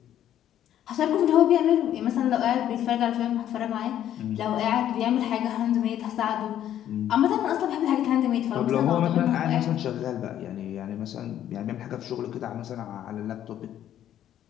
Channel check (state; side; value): quieter; right; 11.2 dB